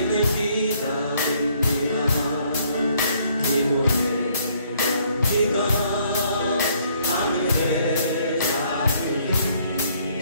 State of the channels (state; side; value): inverted; both; correlation -0.66